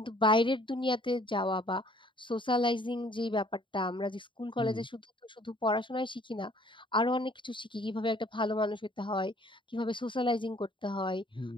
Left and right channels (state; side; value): late; right; 0.24 ms